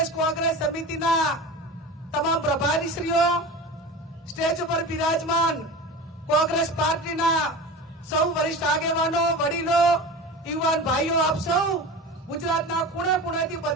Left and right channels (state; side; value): normal; both; correlation 0.31